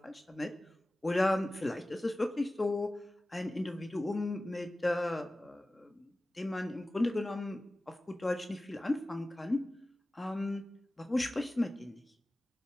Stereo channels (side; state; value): both; normal; correlation 0.96